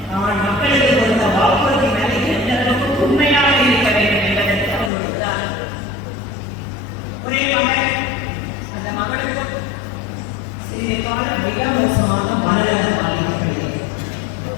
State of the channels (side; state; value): right; drops out; at 4.9 s